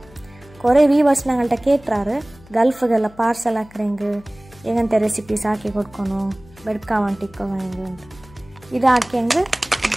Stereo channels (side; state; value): left; noise; hum, 24 dB below the sound